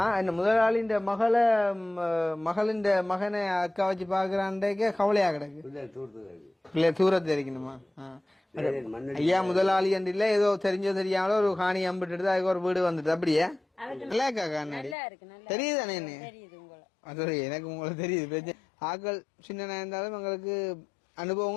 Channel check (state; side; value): drops out; right; at 15.0 s